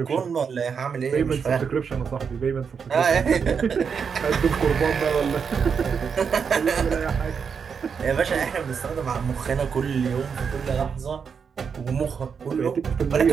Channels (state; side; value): quieter; left; 6.3 dB